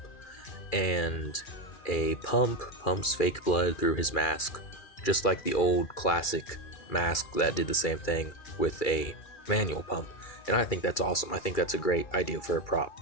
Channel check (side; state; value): right; late; 2.3 ms